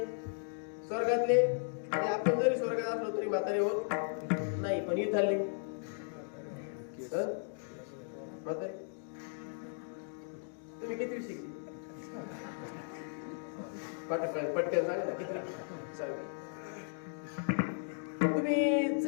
आणि आपण जरी स्वर्गात असलो तरी म्हातारे होत नाही. पण इथले म्हातारे. तुम्ही किती शिकली? पटकन सांगा ना, किती? तुम्ही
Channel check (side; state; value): right; silent; digital silence